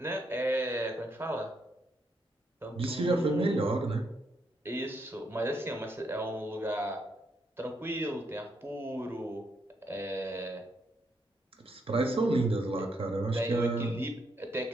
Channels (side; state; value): both; normal; correlation 0.77